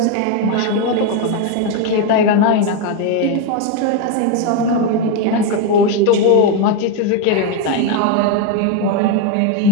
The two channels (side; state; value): both; different; correlation 0.02